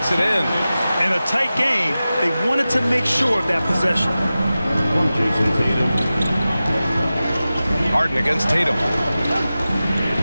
it in. In a tight game, they wanted to make sure of that possession. Harden against Tatum.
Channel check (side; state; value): both; inverted; correlation -0.95